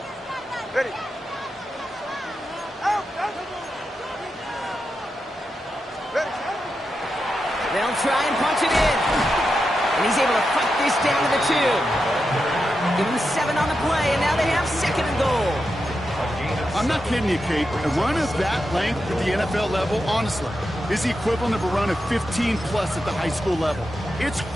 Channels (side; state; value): both; normal; correlation 0.88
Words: Ready. They'll try and punch it in. And he's able to fight this down to the 2. Give him 7 on the play, and now they have 2nd and goal. I'm not kidding you, Kate. A run of that length at the NFL level, honestly, is the equivalent of a run of 15-plus at the high school level. It's